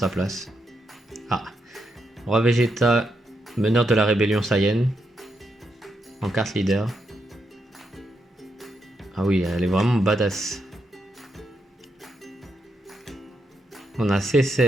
place. Ah. Roi Vegeta, meneur de la rébellion Saiyan. En carte leader. Ah oui, elle est vraiment badass. On a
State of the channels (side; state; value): both; normal; correlation 0.82